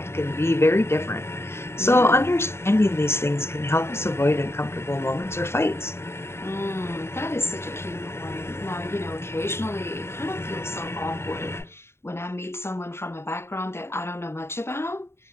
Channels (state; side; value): late; right; 0.12 ms